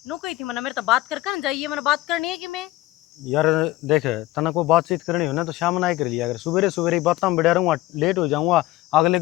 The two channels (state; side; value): quieter; right; 17.2 dB